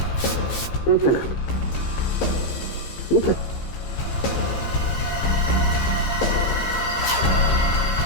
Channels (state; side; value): late; right; 15 ms